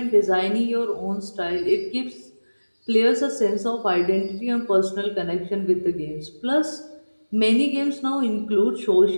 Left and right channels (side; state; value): both; inverted; correlation -1.00